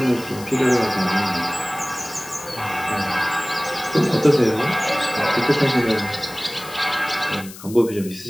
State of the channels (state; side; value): noise; left; hiss, 16 dB below the sound